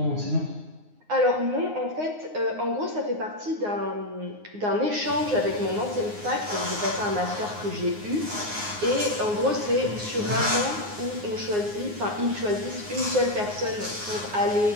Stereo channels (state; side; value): late; left; 9.6 ms